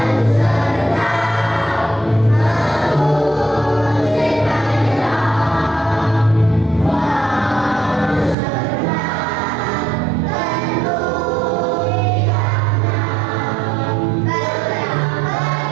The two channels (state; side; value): drops out; left; at 8.3 s